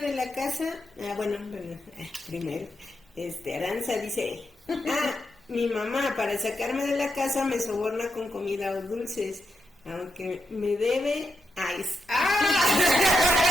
la casa, primero, Aranza dice, mi mamá, para sacarme de la casa, me soborna con comida o dulces, aunque me debe ice.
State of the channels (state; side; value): normal; both; correlation 0.84